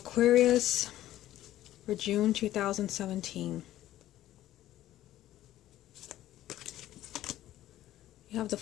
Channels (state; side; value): quieter; right; 13.8 dB